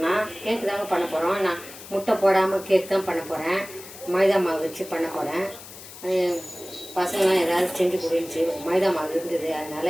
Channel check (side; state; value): left; noise; hiss, 16 dB below the sound